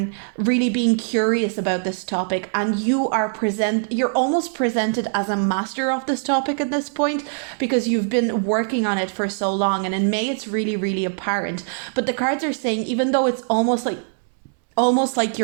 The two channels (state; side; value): silent; left; 64 dB below the other